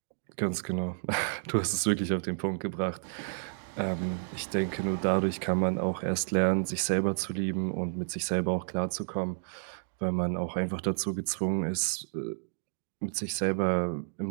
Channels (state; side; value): silent; left; digital silence